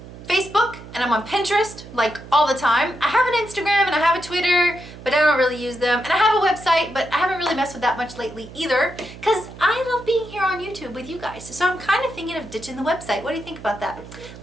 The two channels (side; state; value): right; noise; hum, 16 dB below the sound